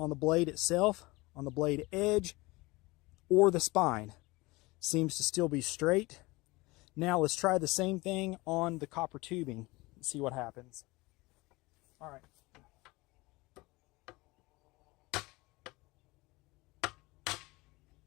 the blade itself, on the blade edge, or the spine. Seems to still be straight. Now let's try the same thing on the copper tubing and see what happens. All right.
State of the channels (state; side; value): quieter; right; 22.6 dB